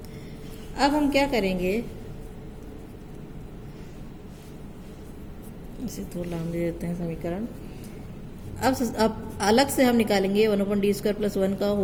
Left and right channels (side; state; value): both; identical; correlation 1.00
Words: अब हम क्या करेंगे, इसे थोड़ा लाम दे देते हैं समीकरण। अब अलग से हम निकालेंगे 1/d² + 1 का